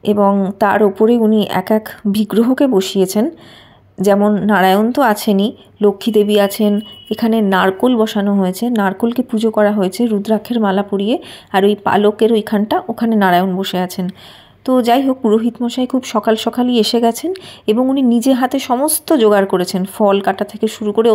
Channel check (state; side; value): identical; both; correlation 1.00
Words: এবং তার ওপরে উনি এক এক বিগ্রহকে বসিয়েছেন। যেমন নারায়ণ তো আছেনই, লক্ষ্মী দেবী আছেন, এখানে নারকোল বসানো হয়েছে, নারকোলকে পুজো করা হয়েছে রুদ্রাক্ষের মালা পরিয়ে, আর ওই পালকের ওইখানটা ওখানে নারায়ণ বসে আছেন। তো যাই হোক, পুরোহিত মশাই খুব সকাল সকালই এসে গেছেন এবং উনি নিজে হাতে সমস্ত জোগাড় করেছেন, ফল কাটা থেকে শুরু করে